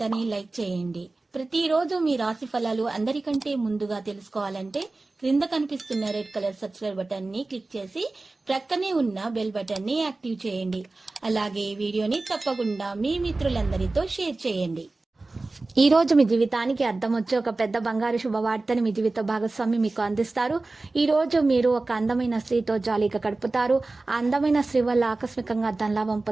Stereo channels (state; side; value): quieter; left; 3.3 dB